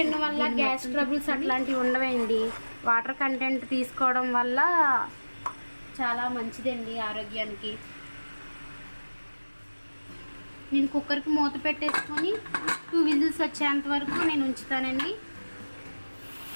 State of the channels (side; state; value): both; inverted; correlation -1.00